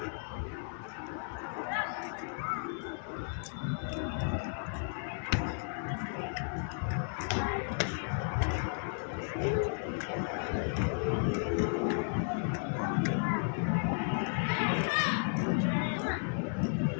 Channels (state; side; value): silent; right; 55 dB below the other